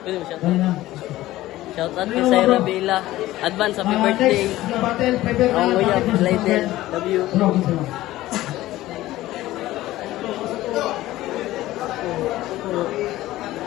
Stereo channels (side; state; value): right; quieter; 16.1 dB